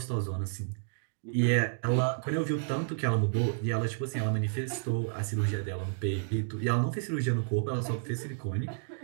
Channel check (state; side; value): silent; left; digital silence